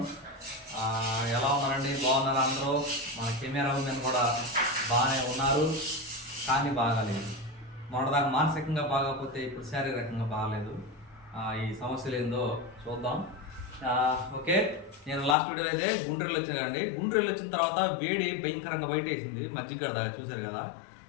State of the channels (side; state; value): right; drops out; at 15.4 s